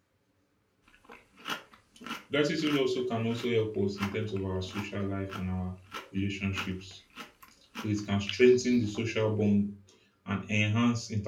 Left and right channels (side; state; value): both; identical; correlation 1.00